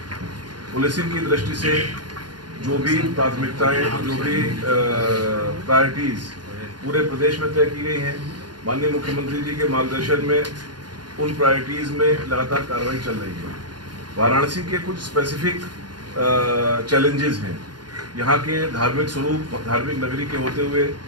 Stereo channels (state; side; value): late; left; 0.70 ms